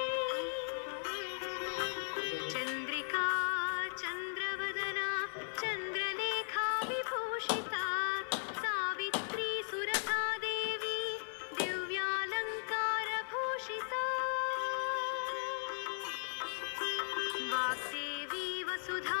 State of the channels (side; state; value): right; silent; 53 dB below the other